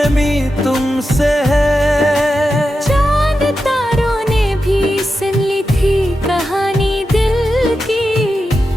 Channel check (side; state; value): both; normal; correlation 0.90